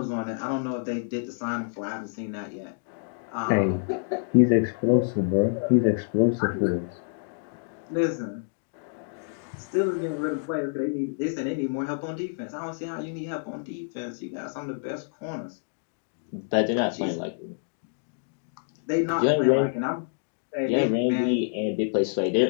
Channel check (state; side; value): silent; right; digital silence